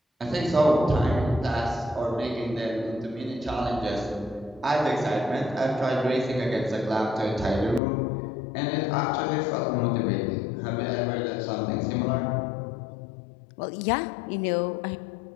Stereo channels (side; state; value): right; drops out; at 7.8 s